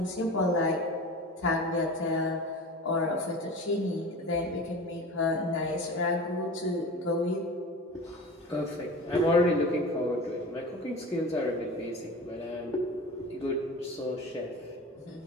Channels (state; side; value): normal; both; correlation 0.34